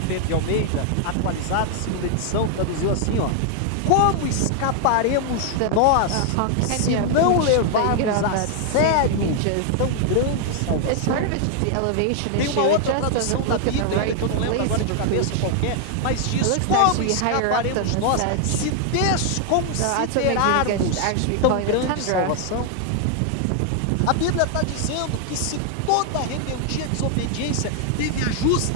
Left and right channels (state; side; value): different; both; correlation 0.00